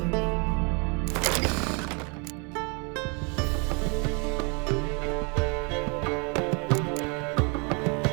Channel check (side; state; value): left; quieter; 33.3 dB